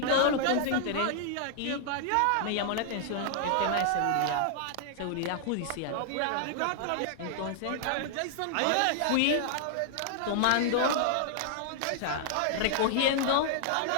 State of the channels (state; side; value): different; both; correlation -0.01